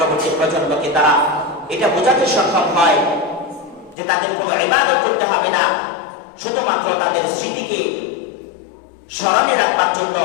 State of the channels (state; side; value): drops out; right; at 4.0 s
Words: প্রজন্মকে তারা এটা বোঝাতে সক্ষম হয় যে তাদের কোনো ইবাদত করতে হবে না, শুধুমাত্র তাদের স্মৃতিকে স্মরণে রাখবার জন্য,